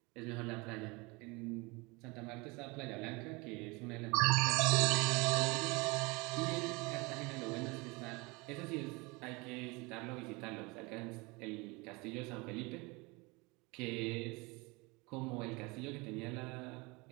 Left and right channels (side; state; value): left; quieter; 26.2 dB